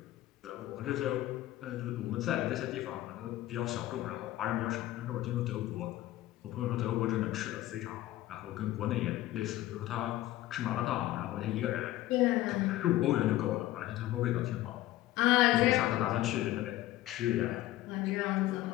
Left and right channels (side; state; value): right; quieter; 15.5 dB